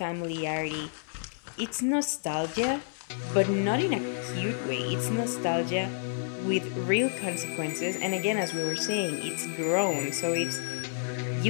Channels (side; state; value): right; silent; 58 dB below the other